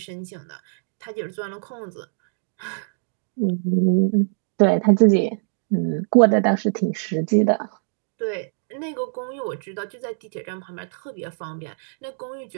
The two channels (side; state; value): left; silent; digital silence